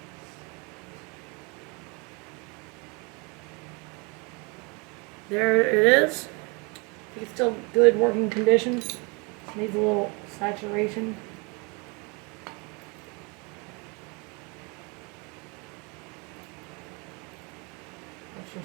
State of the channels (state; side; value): quieter; left; 30.5 dB